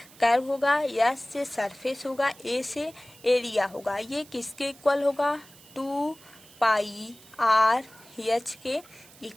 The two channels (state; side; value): noise; right; hiss, 23 dB below the sound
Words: कर्व होगा, एस से सरफेस होगा, ए से एरिया होगा। ये किसके इक्वल होगा, 2 पाई आर एच के